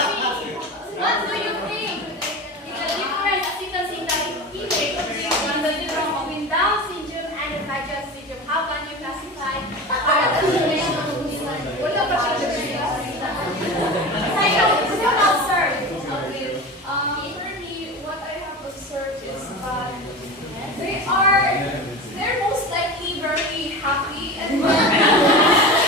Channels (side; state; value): both; normal; correlation 0.29